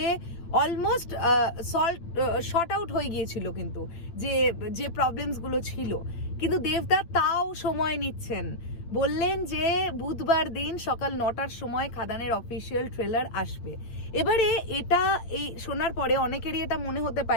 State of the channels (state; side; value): late; right; 8.9 ms